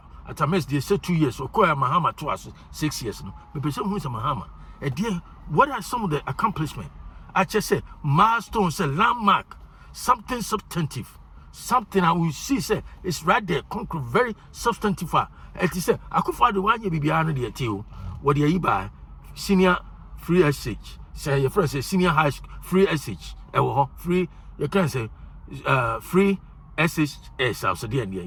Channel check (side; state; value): both; identical; correlation 1.00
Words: Atamels they say 2 years or Mahama to us 6 years no. The person who is a Mahama. And dear, what are some of the accomplishments? I just say milestones, a landmark, something substantive, something I will see say it's right there, concrete, very substantive. It is say I could find the one you be behind the too. What do you buy? Senior free SH. Say your friend say senior high school free SH. Free you can say free SHS also the end.